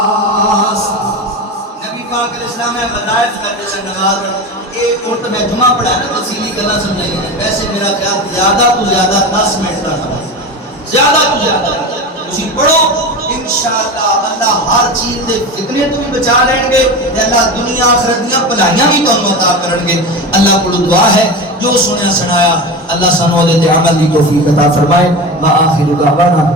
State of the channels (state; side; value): normal; both; correlation 0.25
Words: وظائف کرنے سے نماز ایک اور میں جمعہ پڑھا نا تفصیلی گلا سمجھائی ہے. ویسے میرا خیال زیادہ تو زیادہ 10 منٹ کا نماز, زیادہ تو زیادہ اسی پڑھو. انشاءاللہ اللہ ہر چیز دے فتنے تو بھی بچا لیں گے, اللہ دنیا آخرت دیاں بھلائیاں بھی تانوں عطا کرن گے. اللہ کو دعا ہے جو سنیا سنایا اللہ سانو دے تے عمل دی توفیق عطا فرمائے. وآخر دعوانا